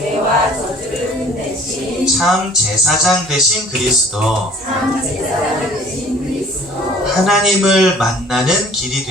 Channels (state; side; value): normal; both; correlation 0.51